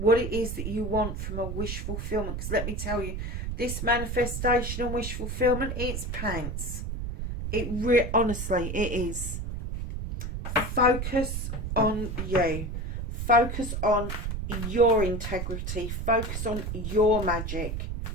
it is that you want from a wish fulfillment. Because let me tell you, this manifestation and wish fulfillment, it's pants. Honestly, it is. Focus on you. Focus on your integrity. Focus on your magic.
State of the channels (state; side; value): noise; right; rumble, 4 dB below the sound